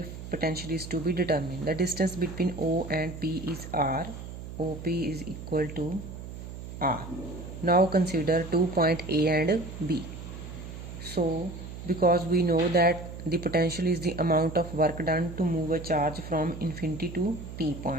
potential is to be determined. The distance between O and P is R. OP is equal to R. Now consider 2 points A and B. So because we know that the potential is the amount of work done to move a charge from infinity to P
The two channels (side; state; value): right; noise; hum, 11 dB below the sound